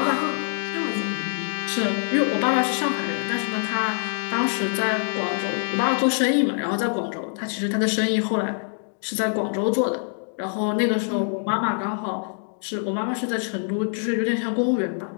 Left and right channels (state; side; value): silent; right; digital silence